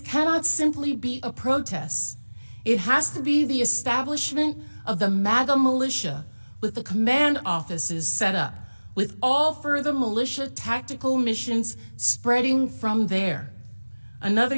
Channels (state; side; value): inverted; both; correlation -1.00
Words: simply be a protest. It has to be the establishment of the MAGA militia with the command offices set up, with all further militia tactical missions spreading from there." Another